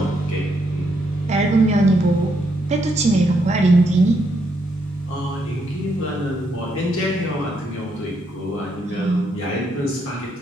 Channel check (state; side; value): normal; both; correlation 0.76